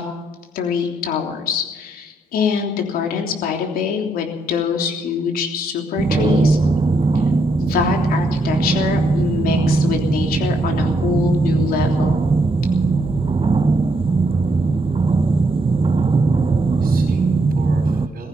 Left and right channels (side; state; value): both; normal; correlation 0.75